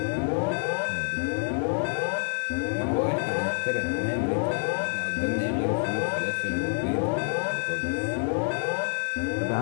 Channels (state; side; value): silent; right; 60 dB below the other